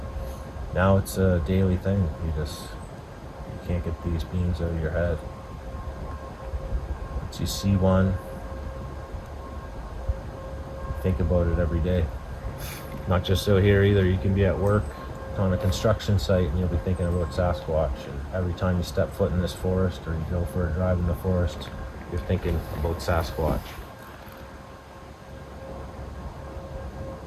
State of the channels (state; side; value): identical; both; correlation 1.00